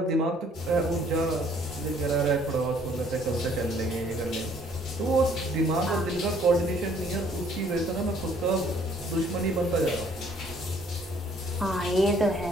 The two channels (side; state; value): both; normal; correlation 0.61